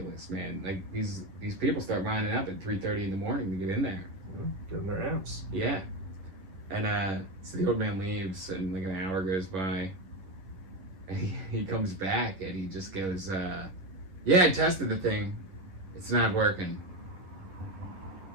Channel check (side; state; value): left; late; 11 ms